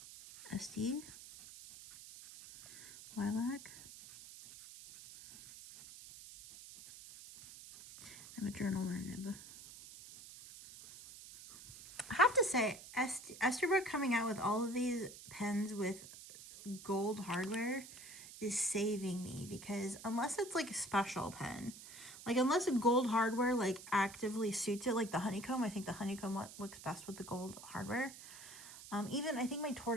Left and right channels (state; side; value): noise; right; hiss, 15 dB below the sound